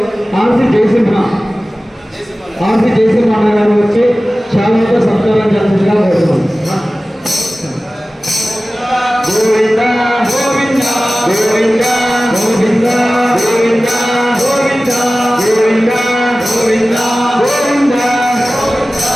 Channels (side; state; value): both; normal; correlation 0.97